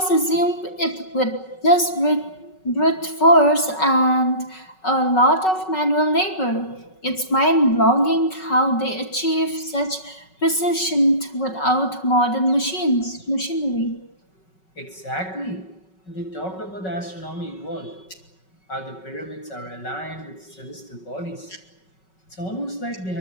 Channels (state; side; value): late; right; 5.4 ms